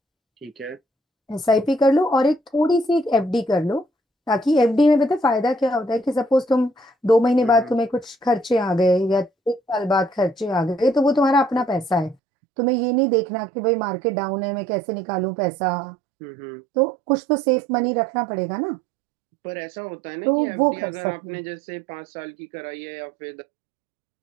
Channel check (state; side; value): drops out; left; at 12.2 s